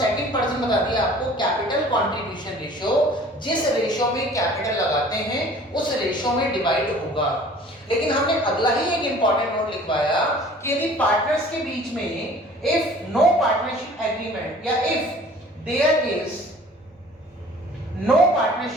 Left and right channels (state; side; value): normal; both; correlation 0.49